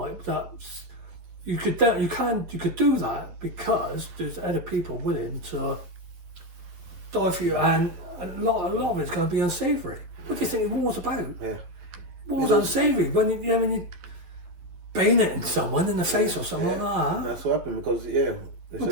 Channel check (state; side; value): late; left; 11 ms